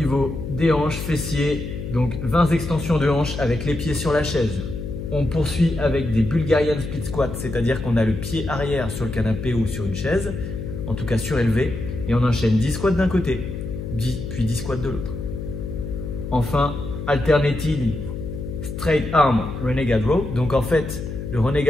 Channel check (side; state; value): left; noise; hum, 7 dB below the sound